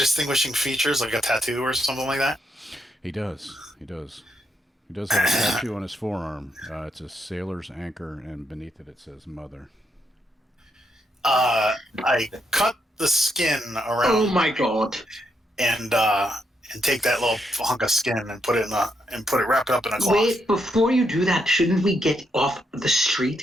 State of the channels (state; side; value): normal; both; correlation 0.79